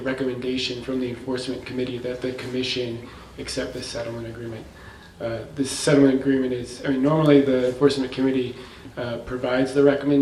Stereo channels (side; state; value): both; identical; correlation 1.00